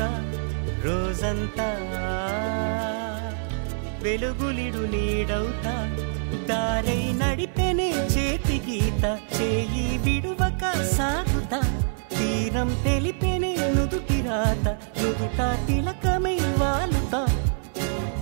రోజంతా వెలుగులిడు నీడవుతా దారై నడిపెనే చేతి గీత చేయి విడువక సాగుతా తీరం తెలిపెనే నుదుటి రాత నుదుట తిలకమై వాలుతా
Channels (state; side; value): silent; left; digital silence